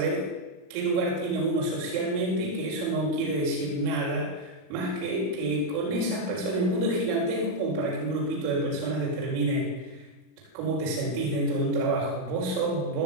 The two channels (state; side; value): late; left; 38 ms